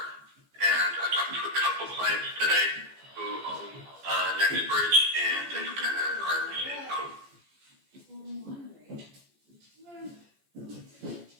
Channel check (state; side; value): late; left; 14 ms